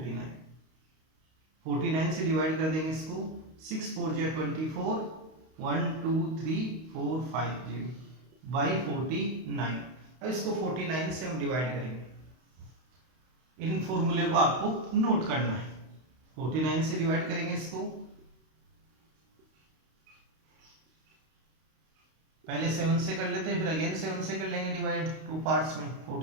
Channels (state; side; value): late; left; 32 ms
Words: 49 से डिवाइड कर देंगे इसको, 6 4 जा 24, 1 2 3 4 5 0, बाई 49। अब इसको 49 से हम डिवाइड करेंगे। इन फॉर्मूले को आपको नोट करना है। 49 से डिवाइड करेंगे इसको, पहले 7 से कर लेते हैं, फिर अगेन 7 से कर लेंगे डिवाइड, टू पार्ट्स में।